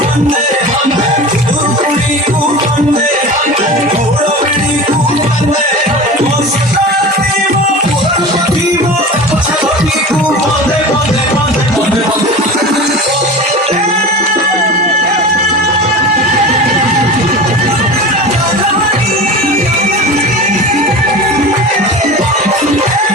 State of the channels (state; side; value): normal; both; correlation 0.33